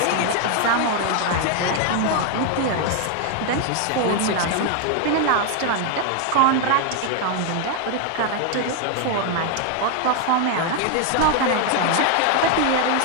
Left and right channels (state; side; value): different; both; correlation 0.00